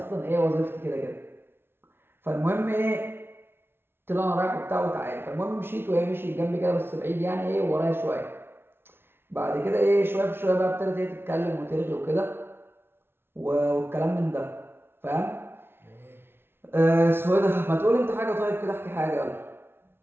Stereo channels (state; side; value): late; left; 0.11 ms